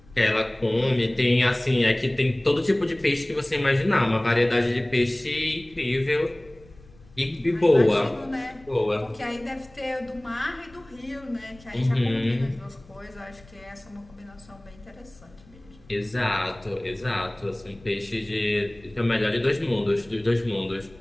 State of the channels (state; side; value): noise; left; rumble, 25 dB below the sound